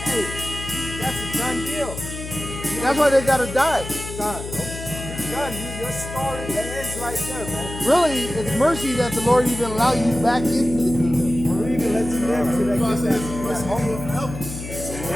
hey, that's a done deal. That's why they gotta die. Done. You're done. Your story ends right there, man. Really, it's mercy that the Lord even allowed you back into the kingdom. Or even lets you live to God that said, "Mercy, that you will help."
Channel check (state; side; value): noise; left; hum, 9 dB below the sound